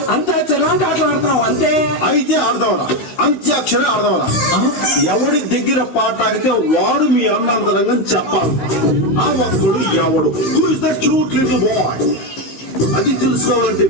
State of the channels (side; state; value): right; late; 16 ms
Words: అంత్యాక్షరి లాంటి ఆటలు ఆడతాం అంతే. అయితే ఆడదాంరా అంత్యాక్షరి ఆడదాంరా. ఎవడి దగ్గర పాట ఆడితే వాడు మీ అన్నంతరంగా చెప్పాలి. ఆ ఒక్కడు ఎవడు who is that cute little boy అది తెలుసుకోవాలంటే